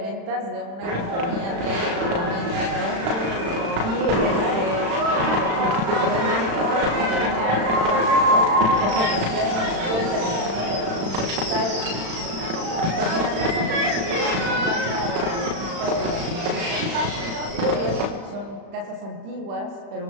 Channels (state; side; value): late; left; 36 ms